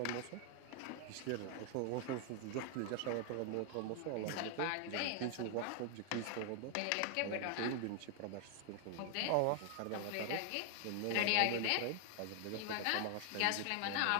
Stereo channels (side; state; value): both; different; correlation 0.00